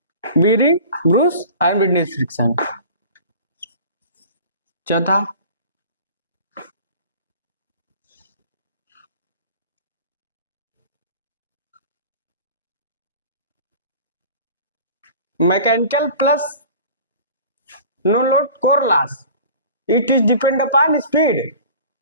बीरिंग, ब्रूस और विंडेज फ्रिक्शन। चौथा mechanical plus no load core loss, it is depend upon speed.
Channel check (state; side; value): inverted; both; correlation -0.42